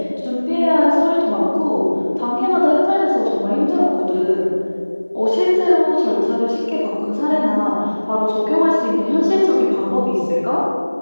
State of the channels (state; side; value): inverted; both; correlation -1.00